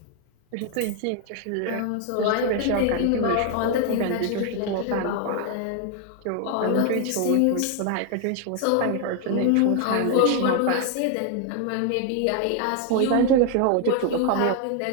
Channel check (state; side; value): different; both; correlation 0.00